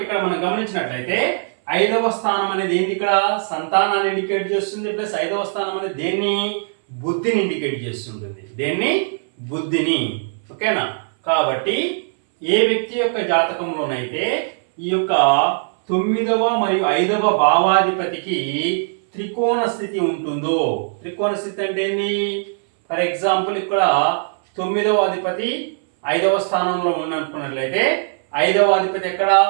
ఇక్కడ మనం గమనించినట్లయితే 5వ స్థానం అనేది ఏంటి, ఇక్కడ సంతానాన్ని ఇండికేట్ చేస్తుంది, ప్లస్ 5వ స్థానం అనేది దేన్ని, బుద్ధిని ఇండికేట్ చేస్తుంటుంది, దేన్ని, బుద్ధిని. ఓకేనా? కాబట్టి ఏ వ్యక్తి యొక్క జాతకంలోనైతే ఈ యొక్క 9వ మరియు 5వ భావాధిపతికి త్రికోణ స్థితి ఉంటుందో, త్రికోణ స్థితి అంటే ఏంటి, ఫర్ ఎగ్జాంపుల్ ఇక్కడ 9వ అధిపతి 5వ స్థానంలో ఉన్నట్లయితే 5వ అధిపతి ఎక్కడ,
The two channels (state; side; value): silent; left; 64 dB below the other